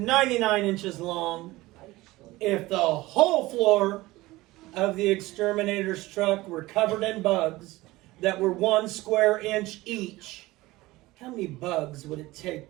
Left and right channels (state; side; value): quieter; left; 19.2 dB